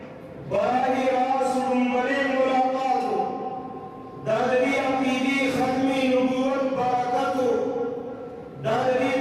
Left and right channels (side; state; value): both; identical; correlation 1.00